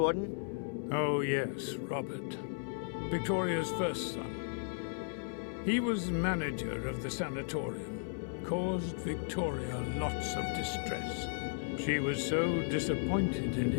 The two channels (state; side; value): silent; right; 54 dB below the other